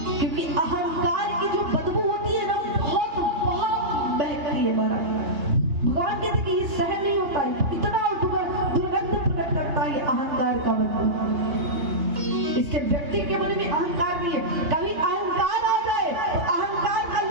क्योंकि अहंकार की जो बदबू होती है ना, बहुत बहुत बहती है। बड़ा भगवान कहते कि ये सहन नहीं होता है, इतना दुर्गंध प्रकट करता है अहंकार का बदबू। इसके व्यक्ति के मन में अहंकार नहीं है। कभी अहंकार आ जाए तो अहंकार का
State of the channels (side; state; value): left; late; 3.3 ms